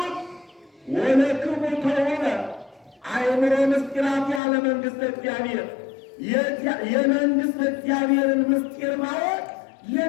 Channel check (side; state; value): right; drops out; at 4.4 s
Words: ወለክሙ ከሆነ አእምሮ ምስጢራት ያለ መንግሥተ እግዚአብሔር የመንግሥተ እግዚአብሔርን ምስጢር ማወቅ